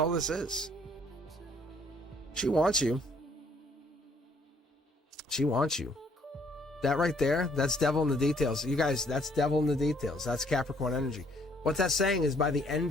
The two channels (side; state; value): both; normal; correlation 0.64